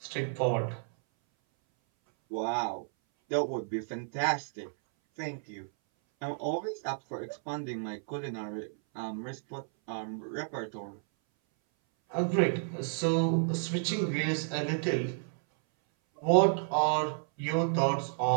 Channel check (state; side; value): silent; left; 57 dB below the other